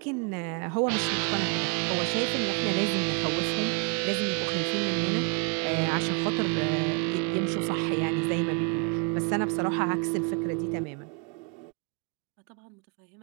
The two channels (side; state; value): left; quieter; 33.1 dB